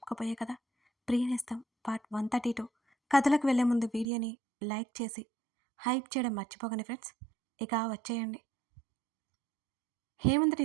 కథ ప్రియనేస్తం పార్ట్ 132. కథలకు వెళ్ళే ముందు వీడియోని లైక్ చేసి హైప్ చేయడం మర్చిపోకండి ఫ్రెండ్స్. ఇక వచ్చేయండి. హేమంత్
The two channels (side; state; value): left; drops out; at 4.0 s